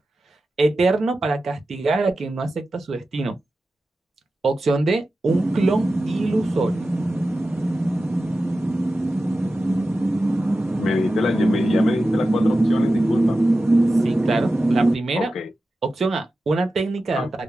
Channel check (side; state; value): both; normal; correlation 0.93